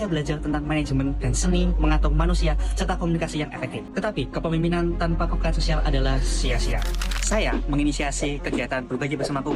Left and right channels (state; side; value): identical; both; correlation 1.00